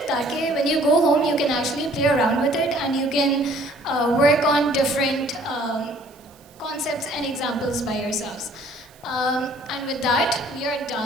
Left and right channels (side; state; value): right; noise; hiss, 28 dB below the sound